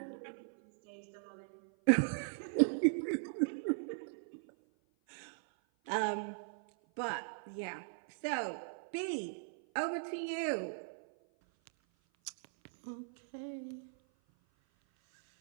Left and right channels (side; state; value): left; silent; 52 dB below the other